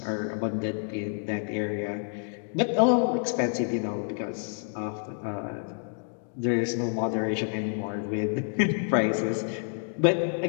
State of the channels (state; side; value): silent; right; 59 dB below the other